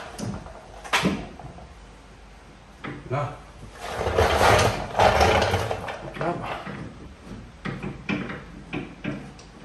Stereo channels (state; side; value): identical; both; correlation 1.00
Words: Là. Hop là.